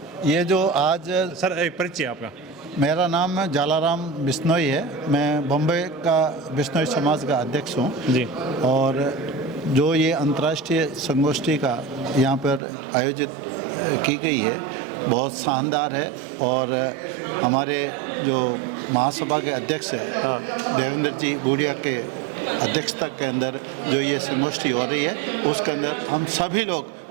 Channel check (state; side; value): drops out; left; at 12.6 s